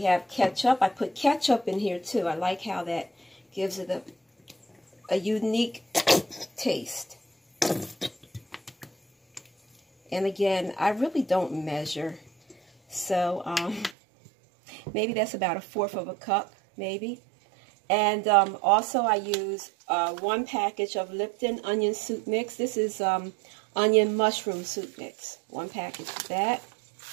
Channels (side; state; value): left; drops out; at 14.0 s